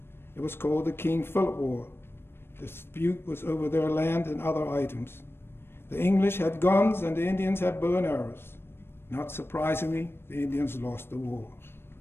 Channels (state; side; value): late; right; 0.11 ms